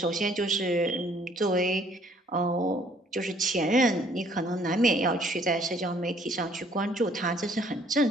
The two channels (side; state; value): both; normal; correlation 0.60